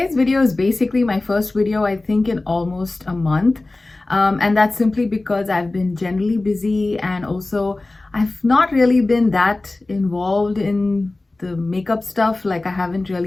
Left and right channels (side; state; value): right; quieter; 3.0 dB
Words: video is basically my first video I think in almost a month, and that's simply because I've been generally busy, and also I've not really been that involved in the makeup stuff. Like, I haven't